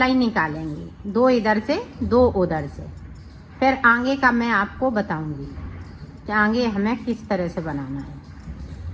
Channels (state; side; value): identical; both; correlation 1.00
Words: निकालेंगे, 2 इधर से 2 उधर से। फिर आगे का मैं आपको बताऊंगी कि आगे हमें किस तरह से बनाना है।